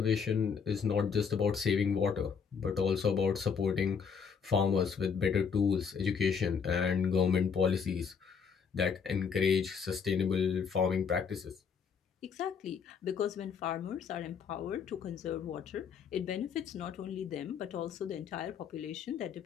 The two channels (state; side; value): quieter; right; 6.4 dB